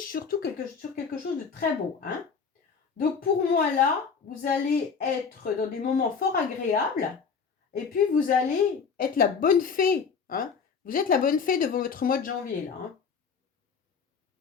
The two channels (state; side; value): quieter; right; 5.8 dB